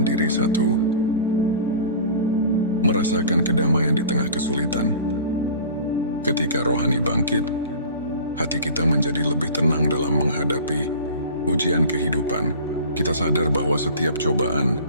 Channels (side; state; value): both; inverted; correlation -0.40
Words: diri. 1. Merasakan kedamaian di tengah kesulitan. Ketika rohani bangkit, hati kita menjadi lebih tenang dalam menghadapi ujian kehidupan. Kita sadar bahwa setiap cobaan